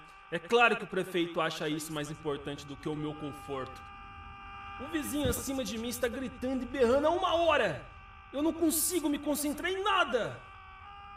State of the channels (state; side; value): identical; both; correlation 1.00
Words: É claro que o prefeito acha isso mais importante do que o meu conforto. O vizinho acima de mim está gritando e berrando há 1 hora! Eu não consigo me concentrar em nada!